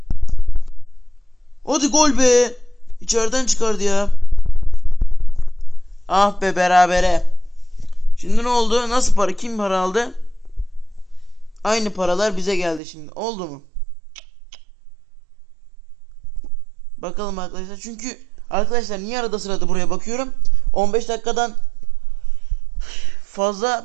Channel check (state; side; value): drops out; left; at 12.8 s